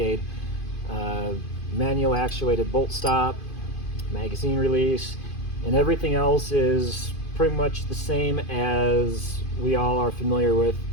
Manual actuated bolt stop, magazine release, and everything else is pretty much the same as we all are familiar with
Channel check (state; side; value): late; right; 2.5 ms